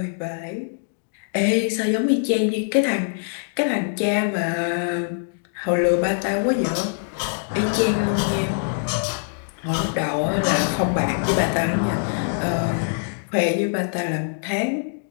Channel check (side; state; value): right; silent; digital silence